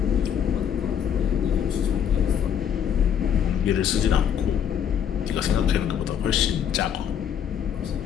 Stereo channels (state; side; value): quieter; right; 8.6 dB